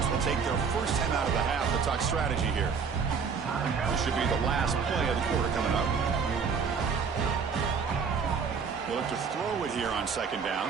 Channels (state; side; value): quieter; left; 5.8 dB